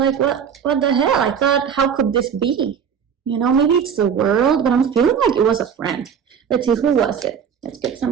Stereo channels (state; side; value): quieter; left; 7.4 dB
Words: what the hell? I thought, how could this be? You know, maybe it's the world, but I'm feeling like it was a friend. Let's see, who was it? Let's get